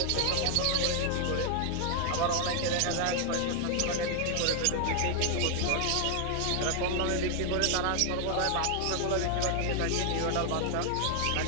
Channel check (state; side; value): different; both; correlation 0.00